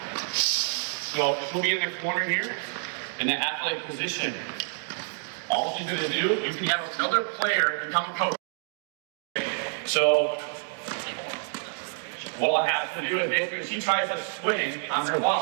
So she'll be in the corner here in the athletic position. All she's going to do, you can have another player become a coach. So what will happen to do is basically she tries to swing on her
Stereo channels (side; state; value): left; silent; 59 dB below the other